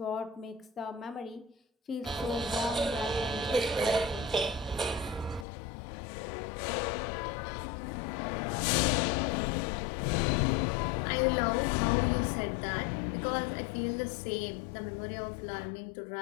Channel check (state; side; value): drops out; right; at 5.5 s